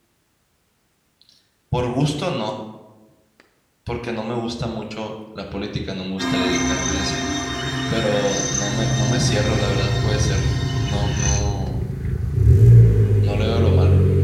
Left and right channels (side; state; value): both; identical; correlation 1.00